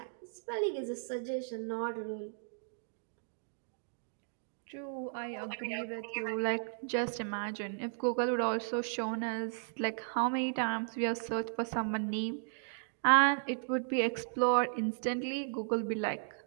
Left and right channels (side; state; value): left; silent; digital silence